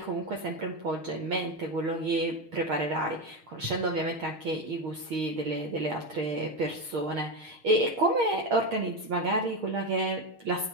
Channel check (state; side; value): late; left; 6.4 ms